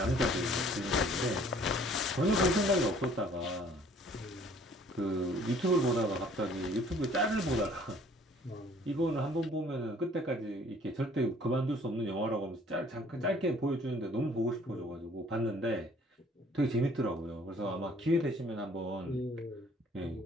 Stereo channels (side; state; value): both; normal; correlation 0.56